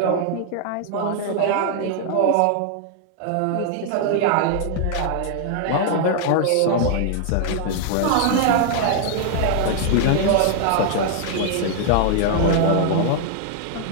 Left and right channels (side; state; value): both; different; correlation 0.00